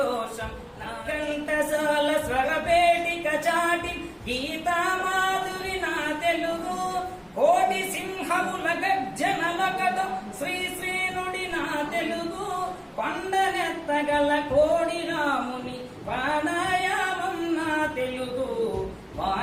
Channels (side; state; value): both; identical; correlation 1.00